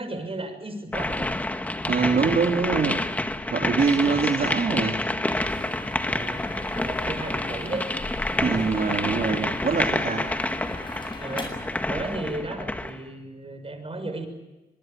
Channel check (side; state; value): both; normal; correlation 0.65